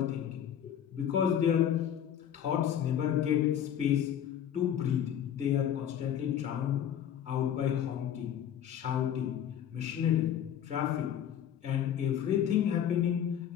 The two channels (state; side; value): quieter; right; 9.7 dB